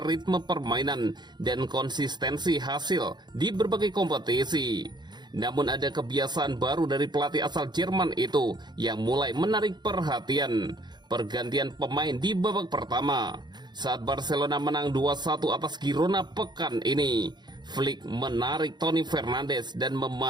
ritme permainan dan konsistensi hasil di berbagai kompetisi. Namun ada kebiasaan baru dari pelatih asal Jerman itu yang mulai menarik perhatian. Pergantian pemain di babak pertama. Saat Barcelona menang 2-1 atas Girona pekan ini, Flick menarik Toni Fernandes dan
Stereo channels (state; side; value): late; left; 0.21 ms